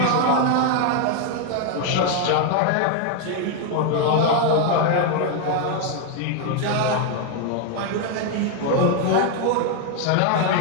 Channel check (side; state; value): both; different; correlation 0.01